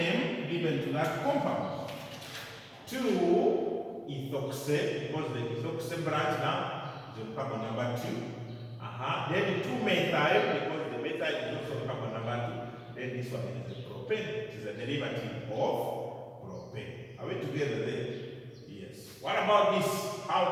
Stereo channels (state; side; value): identical; both; correlation 1.00